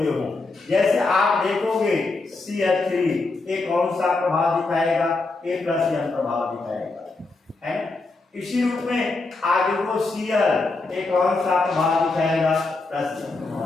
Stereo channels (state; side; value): quieter; right; 3.5 dB